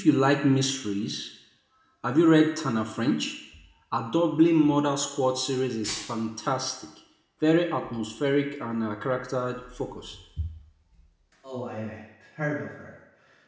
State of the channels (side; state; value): both; identical; correlation 1.00